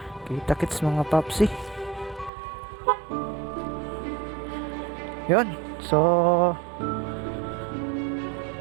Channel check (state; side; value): drops out; left; at 2.3 s